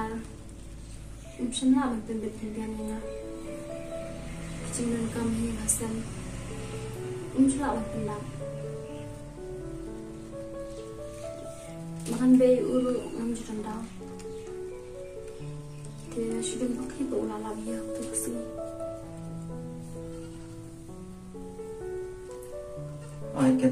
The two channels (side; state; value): both; identical; correlation 1.00